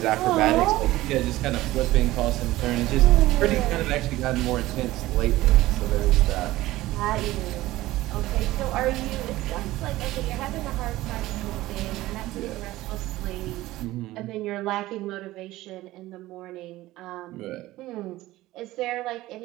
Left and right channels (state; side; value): quieter; left; 17.0 dB